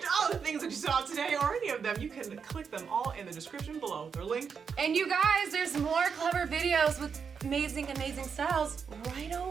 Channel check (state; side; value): quieter; left; 6.2 dB